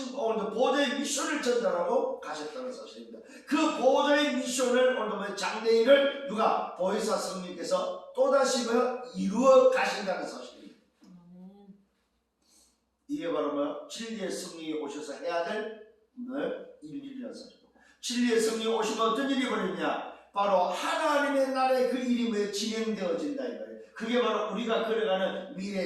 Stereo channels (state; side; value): identical; both; correlation 1.00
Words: 오늘 보좌의 미션을 전달하고 가셨다는 사실입니다. 그 보좌의 미션을 오늘 장래일을 누가? 보혜사 성령께서 또다시 이루어 가신다는 사실입니다. 이게 바로 진리의 성령이 오셔서 해야 될 일이라는 사실입니다. 진리의 성령이 오시면 어떤 일이 벌어지냐? 바로 하나님의 나라의 그 일이 진행되어진다 이 말이에요. 그게 바로 우리가 걸어가는